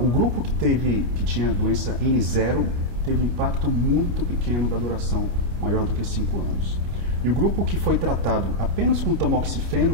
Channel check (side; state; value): left; late; 28 ms